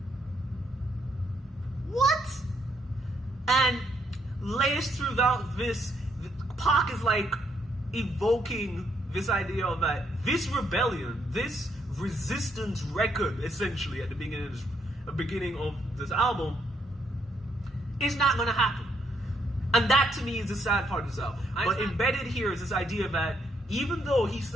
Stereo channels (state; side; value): normal; both; correlation 0.73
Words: What? And laced throughout this, Pac is like evoking this idea of that this rebellion, this resistance record, essentially at the beginning of this album, is not going to happen. And that to me is the sad part of this album. But embedded here is this idea that even though he